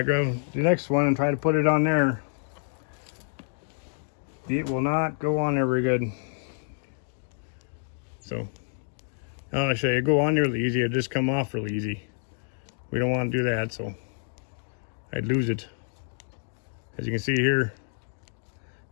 grab the next one and try to put it on there, it will not go on there very good. So, I'll show you, go on there really easy, it'll just come off really easy. We don't want to do that, so I'd lose it. As you can see here,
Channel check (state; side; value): silent; right; digital silence